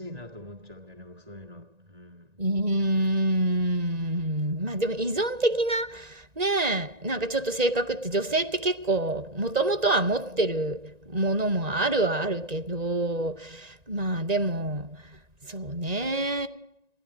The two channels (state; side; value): late; left; 1.9 ms